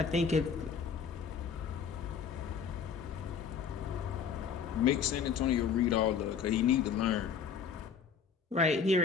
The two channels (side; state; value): right; quieter; 6.6 dB